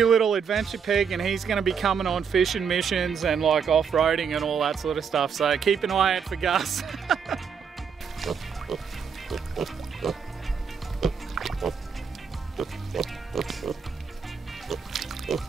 little adventure pig, and he's going to be coming on fishing missions and like off-roading and all that sort of stuff. So keep an eye out for Gus.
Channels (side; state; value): left; quieter; 6.5 dB